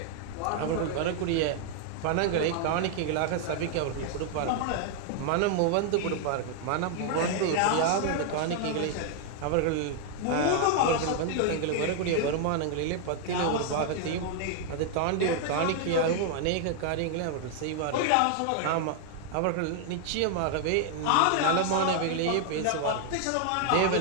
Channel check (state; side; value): different; both; correlation 0.00